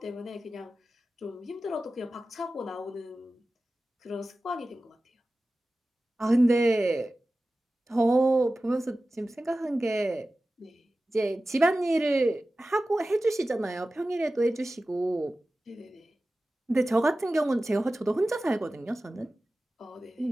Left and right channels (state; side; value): normal; both; correlation 0.95